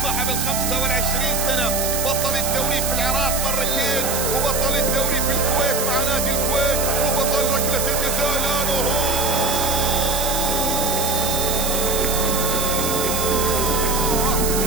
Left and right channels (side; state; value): right; noise; hiss, 2 dB below the sound